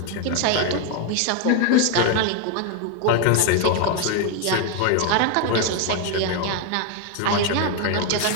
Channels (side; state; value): both; different; correlation 0.01